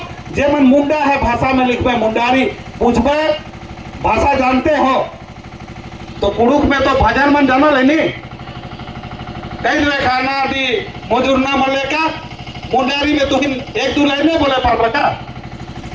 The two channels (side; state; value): both; identical; correlation 1.00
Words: जेमन मुंडा है भाषा में लिखबे मुंडारी। पूछबे भाषा जानते हो तो कुड़ुक में तो भजन मन जाना लेनी, कई लेखाना दी मजूरना मले का, मुंडारी में तो 1-2 लाइन बोले पड़ रखा।